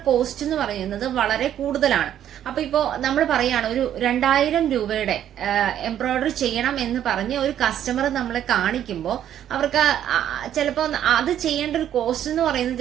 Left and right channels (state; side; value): quieter; left; 10.7 dB